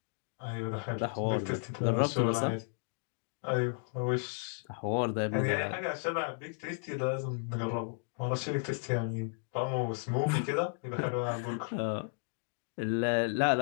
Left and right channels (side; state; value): right; silent; 55 dB below the other